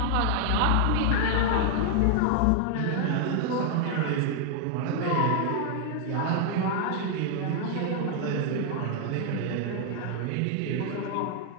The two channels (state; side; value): different; both; correlation 0.00